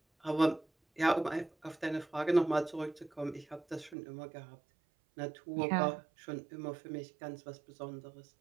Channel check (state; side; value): drops out; left; at 4.0 s